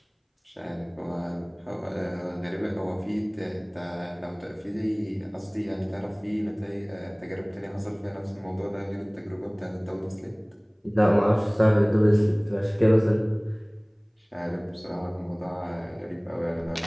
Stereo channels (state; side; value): identical; both; correlation 1.00